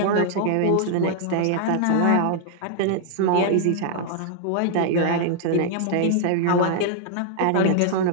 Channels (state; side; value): different; both; correlation 0.00